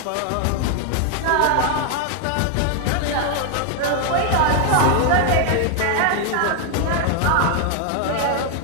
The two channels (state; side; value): different; both; correlation 0.00